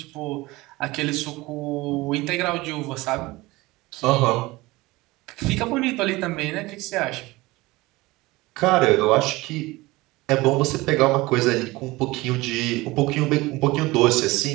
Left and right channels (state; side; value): quieter; left; 20.7 dB